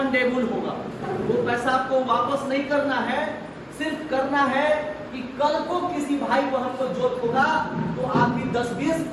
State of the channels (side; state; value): both; identical; correlation 1.00